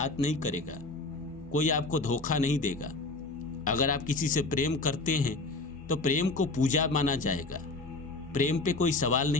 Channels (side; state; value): right; quieter; 3.3 dB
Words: नहीं करेगा, कोई आपको धोखा नहीं देगा। अगर आप किसी से प्रेम करते हैं तो प्रेम को पूजा माना जाएगा, प्रेम पे कोई सवाल